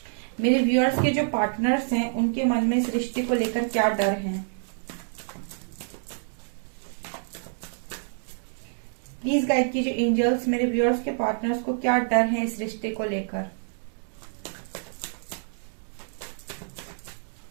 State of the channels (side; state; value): left; silent; digital silence